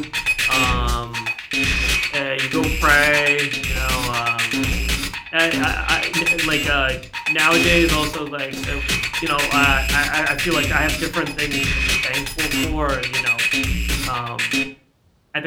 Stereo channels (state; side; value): identical; both; correlation 1.00